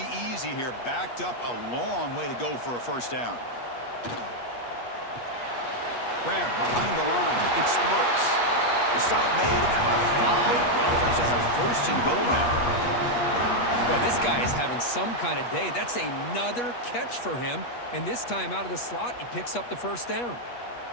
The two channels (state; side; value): late; right; 8.3 ms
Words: easy here. Backed up a long way to go for a first down. Grab behind the line. It smirks. The stop made at the 5. The offense will have 1st and goal now. Boy, this guy is having some kind of day. That's another catch for him. And this time out of the slot, he picks up the first down.